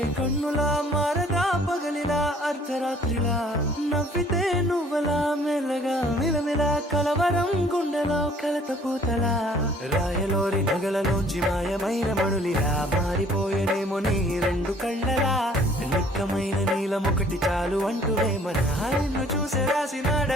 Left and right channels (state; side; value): normal; both; correlation 0.57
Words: కన్నులా మారగా పగలిలా అర్ధరాత్రిలా నవ్వితే నువ్వలా మెల్లగా మిలమిలా కలవరం గుండెలో కలత పూతలా రాయలోరి నగలలోంచి మాయమైన మణులిలా మారిపోయేనేమో నీ రెండు కళ్ళలా నిక్కమైన నీలమొకటి చాలు అంటూ మన నిన్ను చూసే